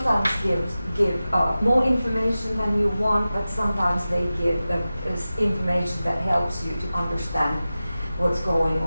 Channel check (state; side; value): inverted; both; correlation -0.95